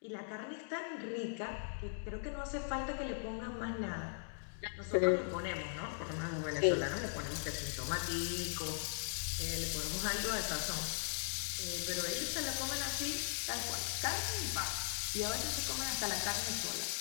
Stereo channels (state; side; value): silent; right; digital silence